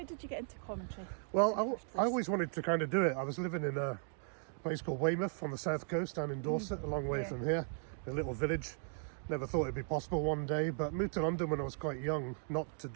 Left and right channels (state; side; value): silent; left; 53 dB below the other